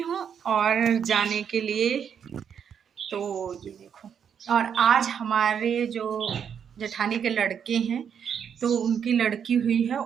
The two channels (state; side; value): quieter; left; 7.8 dB